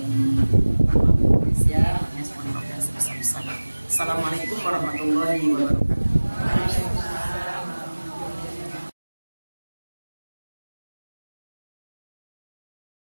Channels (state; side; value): inverted; both; correlation -1.00